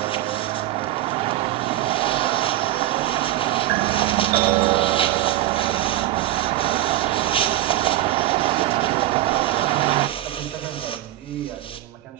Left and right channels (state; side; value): quieter; left; 14.6 dB